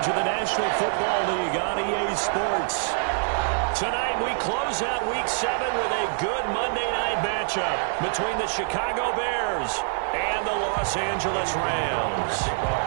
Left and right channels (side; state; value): left; silent; digital silence